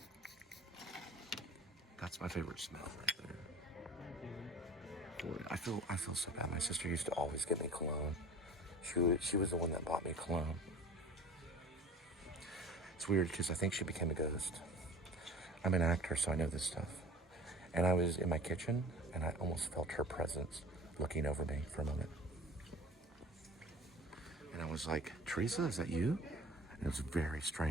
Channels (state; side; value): normal; both; correlation 0.42